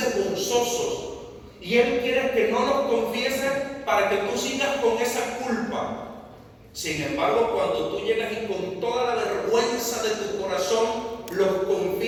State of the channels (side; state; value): both; identical; correlation 1.00